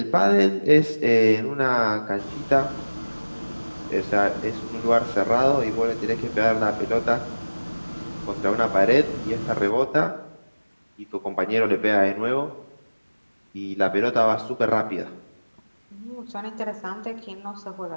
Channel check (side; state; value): both; inverted; correlation -1.00